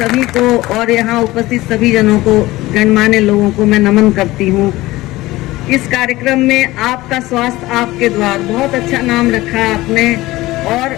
को और यहाँ उपस्थित सभी जनों को, गणमान्य लोगों को मैं नमन करती हूँ। इस कार्यक्रम में आपका स्वास्थ्य आपके द्वार, बहुत अच्छा नाम रखा है आपने। और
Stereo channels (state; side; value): quieter; right; 18.5 dB